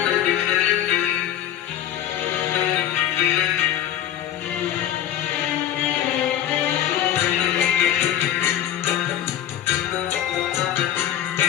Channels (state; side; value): quieter; right; 11.2 dB